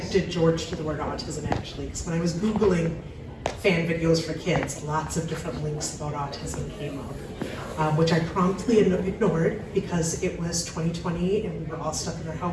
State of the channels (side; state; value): both; identical; correlation 1.00